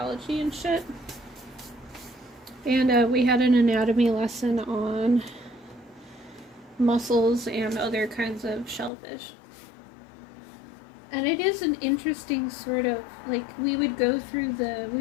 and shit. And we had an anatomy lesson on mussels and other kinds of shellfish. And it is an interesting sort of, like, we would do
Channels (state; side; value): drops out; right; at 8.9 s